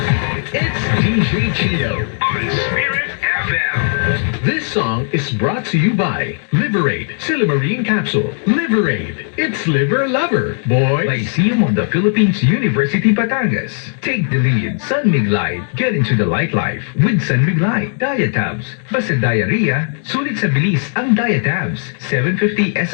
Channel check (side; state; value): right; silent; digital silence